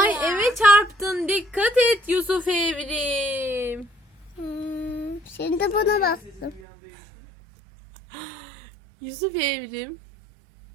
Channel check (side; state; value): left; drops out; at 6.6 s